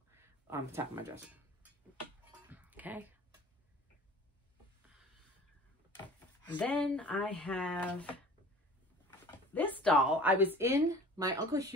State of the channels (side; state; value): both; normal; correlation 0.44